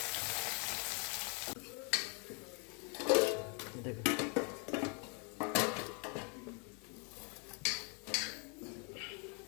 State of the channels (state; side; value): quieter; right; 35.9 dB